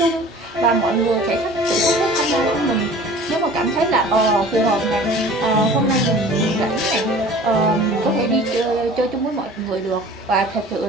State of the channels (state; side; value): normal; both; correlation 0.44